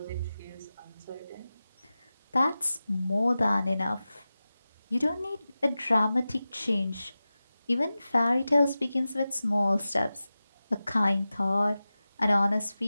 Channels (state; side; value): inverted; both; correlation -0.95